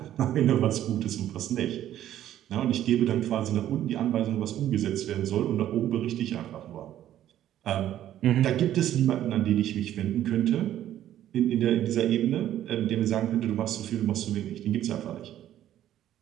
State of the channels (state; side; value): quieter; left; 12.0 dB